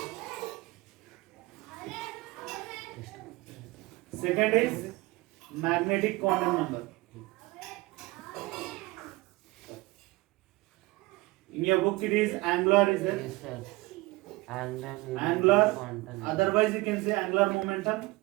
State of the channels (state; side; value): quieter; left; 21.6 dB